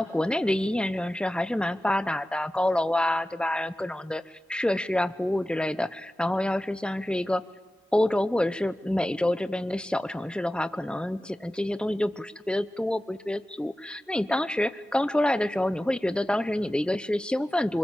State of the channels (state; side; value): normal; both; correlation 0.95